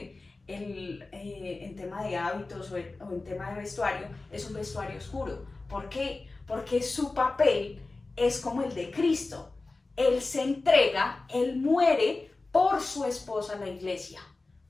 en tema de hábitos o en tema de vestuario, es un vestuario oscuro. ¿Por qué? Porque su papel es como el de Cristo. Él se entrega, Él muere por su esposa, la iglesia,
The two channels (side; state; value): right; quieter; 3.4 dB